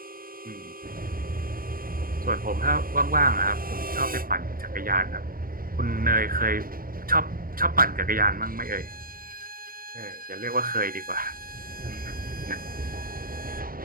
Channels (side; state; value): left; late; 0.41 ms